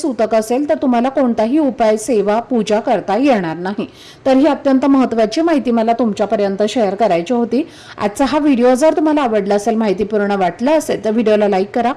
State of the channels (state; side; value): identical; both; correlation 1.00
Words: असेल तर तुम्हाला कोणताही उपाय, सेवा, पूजा करता येणार नाही. तर ही अत्यंत महत्त्वाची माहिती मला तुमच्यापर्यंत शेअर करायची होती. आजचा हा व्हिडिओ जर तुम्हाला आवडला असेल, माहितीपूर्ण वाटला असेल तर व्हिडिओला लाईक करा.